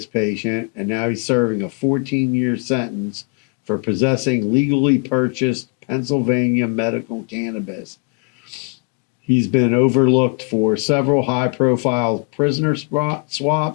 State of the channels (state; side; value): quieter; right; 36.4 dB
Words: patient, and now he's serving a 14-year sentence for possessing legally purchased Pennsylvania medical cannabis. He's been overlooked for several high-profile prisoner